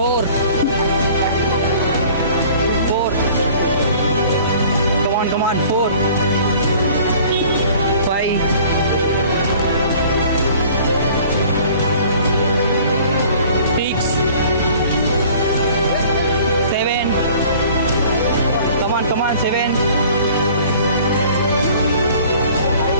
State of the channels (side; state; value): both; inverted; correlation -0.50